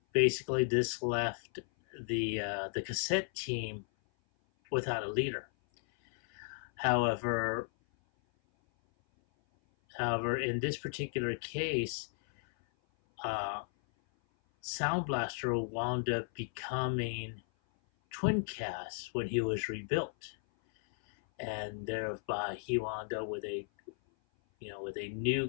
basically this left the cassette team without a leader. However, in this particular case, Sound Blaster wound up becoming Twincast when he was rebuilt, and thereby he wound up with a new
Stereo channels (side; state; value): right; silent; 55 dB below the other